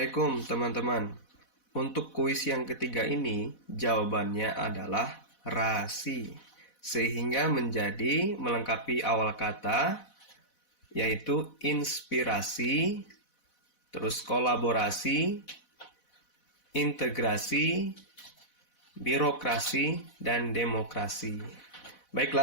teman-teman. Untuk kuis yang ketiga ini, jawabannya adalah rasi. Sehingga menjadi melengkapi awal kata, yaitu inspirasi, terus kolaborasi, integrasi, birokrasi, dan demokrasi.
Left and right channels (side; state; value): right; late; 4.1 ms